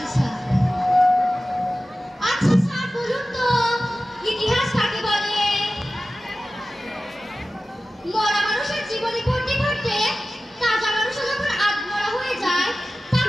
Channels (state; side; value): normal; both; correlation 0.95